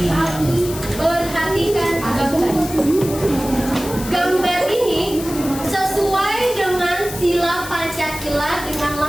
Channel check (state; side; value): noise; left; hiss, 11 dB below the sound